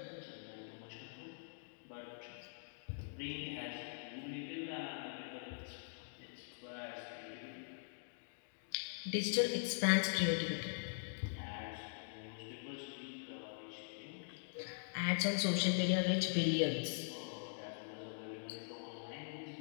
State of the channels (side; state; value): right; silent; digital silence